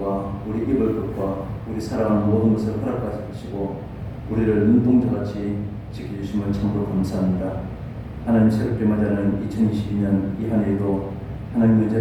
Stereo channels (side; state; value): both; identical; correlation 1.00